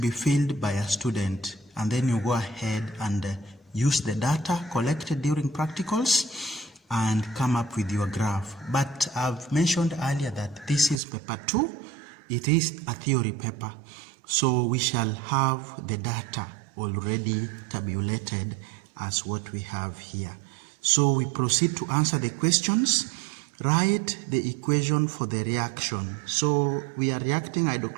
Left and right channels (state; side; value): drops out; left; at 11.0 s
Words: filled by a student, and then you go ahead and use the data collected during practicals and come up with your graph. But I've mentioned earlier that this is paper 2. It is a theory paper, so we shall have the data already tabulated as what we have here. So we proceed to answer the questions. Write the equation for the reaction. So we are reacting